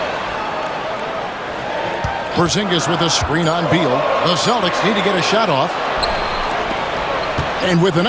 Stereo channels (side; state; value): both; identical; correlation 1.00